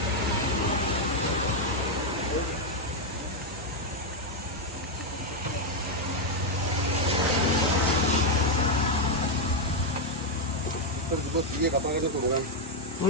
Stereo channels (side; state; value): both; normal; correlation 0.02